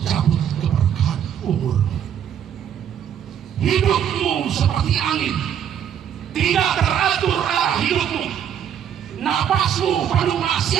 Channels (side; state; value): left; quieter; 9.2 dB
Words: cabut keberkahan umur. Hidupmu seperti angin, tidak teratur arah hidupmu. Napasmu penuh